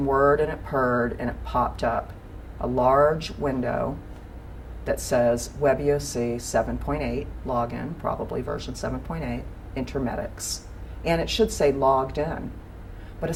whirred and it purred and it popped up a large window that says WebEOC 7.8, login, probably version 7.8, Intermedics. And it should say logged in. But a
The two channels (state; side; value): identical; both; correlation 1.00